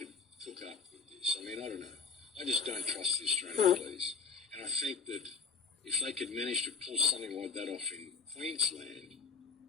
up with this. I mean, I don't know. I just don't trust the Australian police. And I think that if they could manage to pull something like that off in Queensland,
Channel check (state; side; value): quieter; right; 5.2 dB